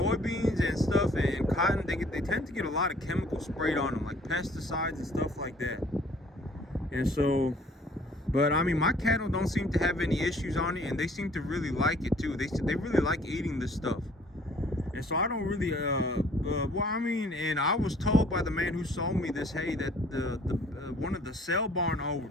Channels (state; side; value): normal; both; correlation 0.57